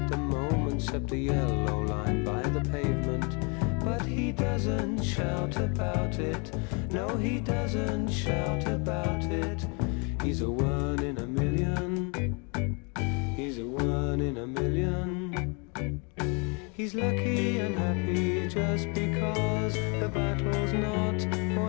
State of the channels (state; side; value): quieter; right; 33.5 dB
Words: the moment, except the yellow line by the pavement. But he doesn't shout about it, no he doesn't shout about it. He's a one in a million, he's a one in a million. He's lucky and happy just because the battle's not